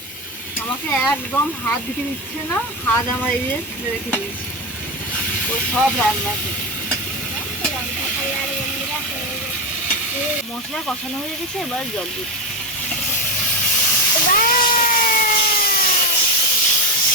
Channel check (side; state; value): both; normal; correlation 0.13